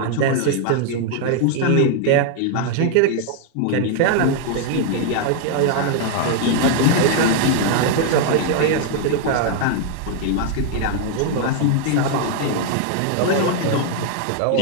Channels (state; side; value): different; both; correlation 0.00